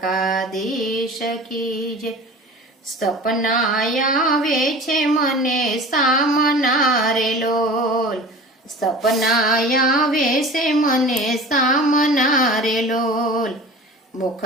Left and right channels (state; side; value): normal; both; correlation 0.39